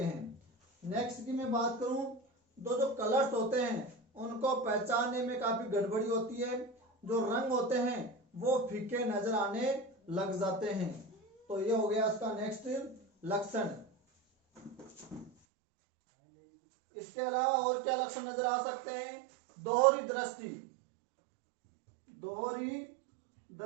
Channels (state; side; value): drops out; left; at 15.3 s